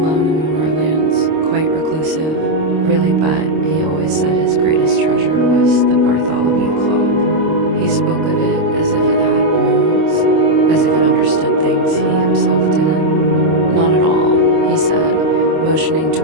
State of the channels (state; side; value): late; left; 26 ms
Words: in the moorlands, quite reclusive, really, but he always said his greatest treasure was the Bartholomew clock. He spoke of it as if it had moods, as if it understood things he himself didn't. Not at all," he said, motioning